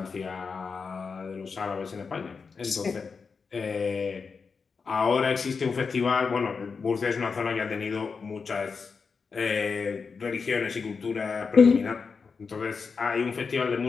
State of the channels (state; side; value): quieter; right; 5.2 dB